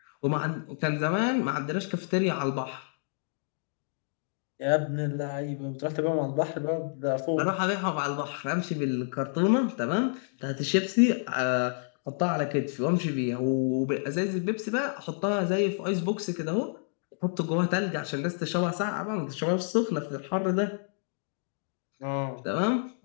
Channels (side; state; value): right; silent; digital silence